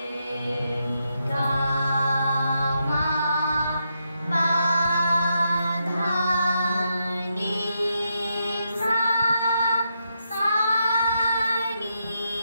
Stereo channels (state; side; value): inverted; both; correlation -0.82